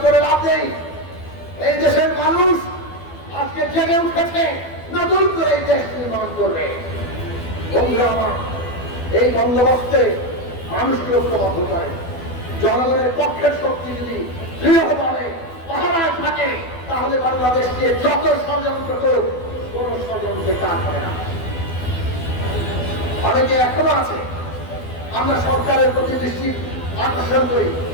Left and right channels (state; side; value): late; right; 12 ms